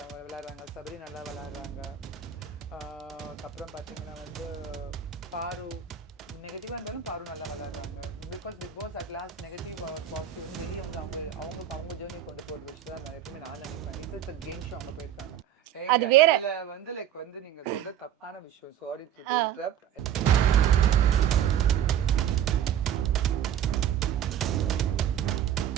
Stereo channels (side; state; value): left; quieter; 9.8 dB